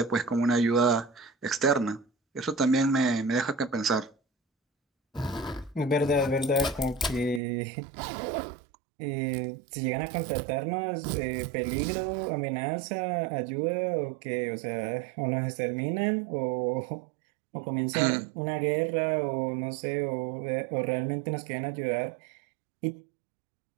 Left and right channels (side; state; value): left; drops out; at 7.4 s